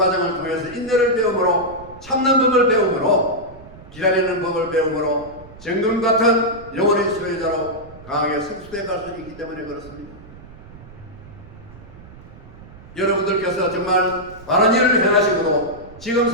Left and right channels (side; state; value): right; noise; rumble, 19 dB below the sound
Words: 통해서 인내를 배움으로 참는 법을 배움으로 기다리는 법을 배움으로 정금 같은 영혼의 소유자로 강하게 성숙해 갈 수 있기 때문에 그렇습니다. 여러분들께서 정말 바른 일을 행하시고도 지금